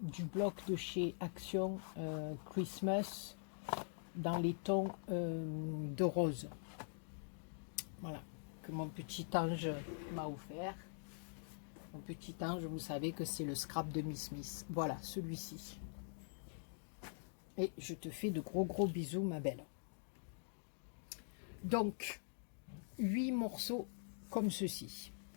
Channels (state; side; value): silent; right; digital silence